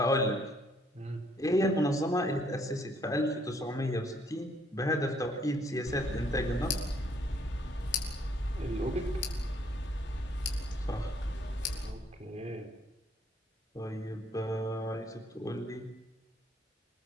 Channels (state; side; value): normal; both; correlation 0.66